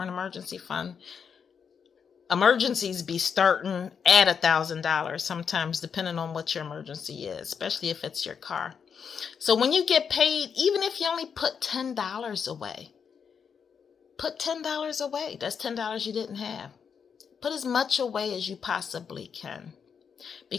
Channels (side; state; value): right; quieter; 6.7 dB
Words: emergency fund. Emergencies be starting at $1,000 sometimes, depending on what your emergency is, especially if it's your car. So when you get paid, even if you only put $10 away, put $10 away. That's $10 you didn't have. Put as much away as you possibly can.